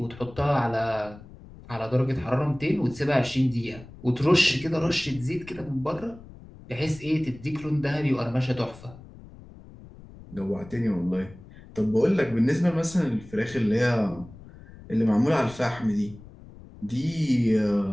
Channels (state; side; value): noise; left; rumble, 19 dB below the sound